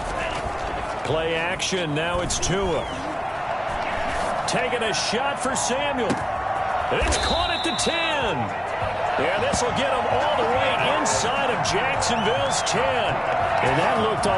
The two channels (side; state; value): both; identical; correlation 1.00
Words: Play action, now it's Tua. Taking a shot for Samuel. It's caught at the 10. Yeah, this will get him all the way inside of Jacksonville's 10. And that looked